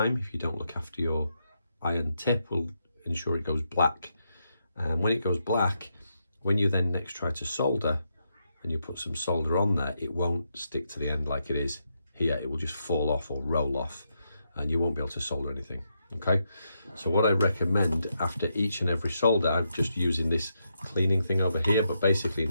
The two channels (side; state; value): both; inverted; correlation -0.81